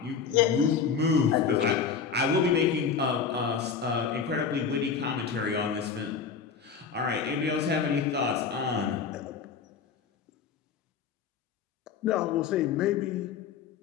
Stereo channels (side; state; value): right; quieter; 6.1 dB